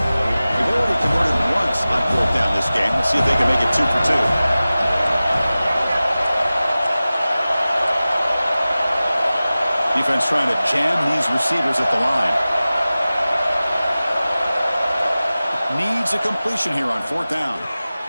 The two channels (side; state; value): both; inverted; correlation -0.97